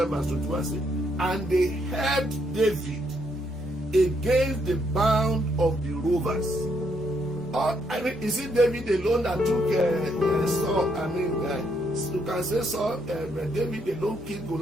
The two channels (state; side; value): normal; both; correlation 0.74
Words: verse 21 says, and they helped David against the band of the rovers. Is it David alone that took Saul? You can say Saul, David alone killed